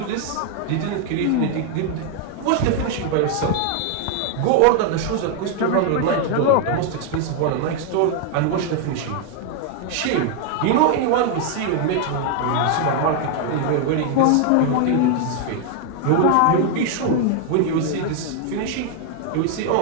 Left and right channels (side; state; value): both; different; correlation 0.00